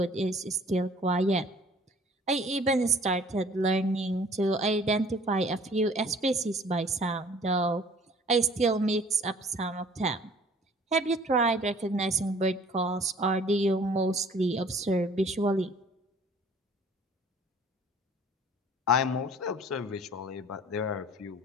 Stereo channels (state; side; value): normal; both; correlation 0.53